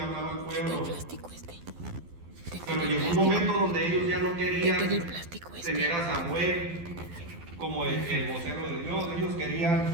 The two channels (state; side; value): late; left; 12 ms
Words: hablaba al pueblo. Pero llegó un momento donde ellos ya no querían tener a Samuel como el vocero de Dios. Ellos